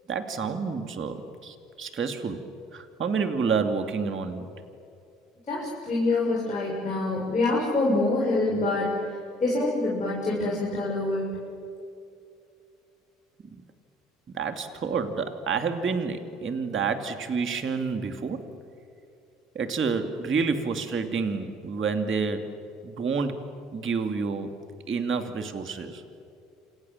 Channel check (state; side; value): normal; both; correlation 0.58